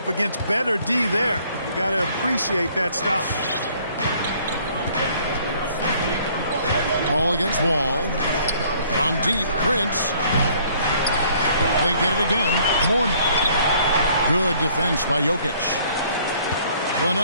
against better D there. You got to appreciate that stop. Ball against Wall. From deep, Prince. They get it again. Mourning. Good defense by Jokic. The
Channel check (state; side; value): inverted; both; correlation -0.60